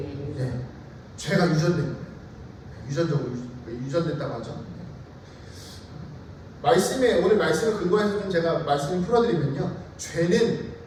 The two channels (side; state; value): both; identical; correlation 1.00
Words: 죄가 유전된 거예요. 유전적으로 유전됐다고 하죠. 오늘 말씀을 근거해서 좀 제가 말씀을 풀어드리면요. 죄는